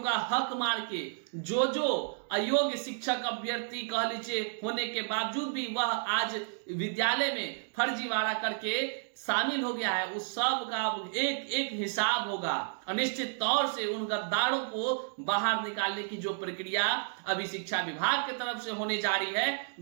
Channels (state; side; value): silent; left; digital silence